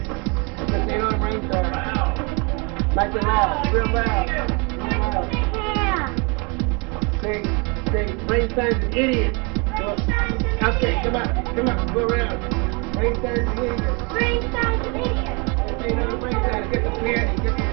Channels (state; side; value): quieter; left; 30.6 dB